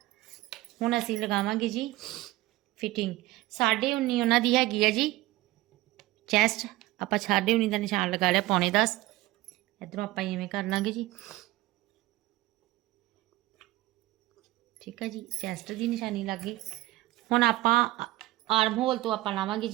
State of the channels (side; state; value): left; quieter; 18.0 dB